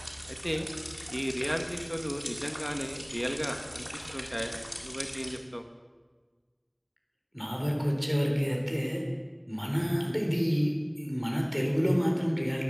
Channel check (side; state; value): both; identical; correlation 1.00